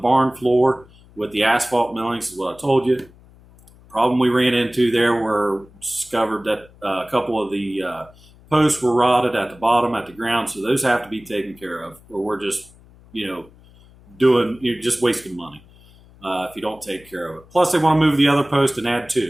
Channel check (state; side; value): noise; left; hum, 25 dB below the sound